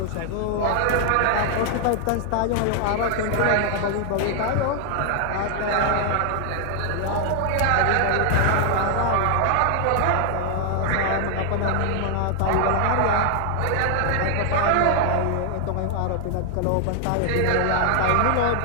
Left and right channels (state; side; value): different; both; correlation 0.00